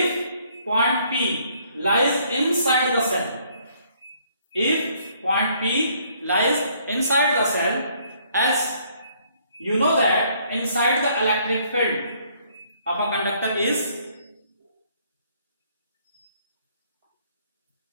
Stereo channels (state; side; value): inverted; both; correlation -0.65